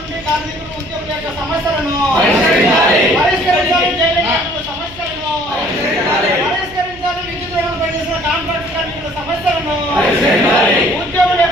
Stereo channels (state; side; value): noise; right; hum, 20 dB below the sound